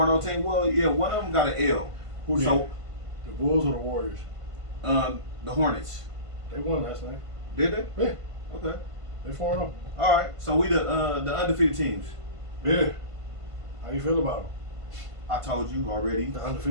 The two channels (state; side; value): late; left; 1.5 ms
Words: team. Well, yeah, one of them got an L. Who did? So, The Bulls or the Warriors? the Hornets. They won last night. Did they? Yeah. Okay. They 4-0. All right. So we the undefeated teams. Yeah. How you feel about them? I told you already. The